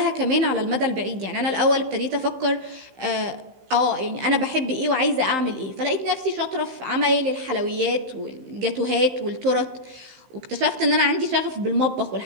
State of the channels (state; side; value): late; left; 15 ms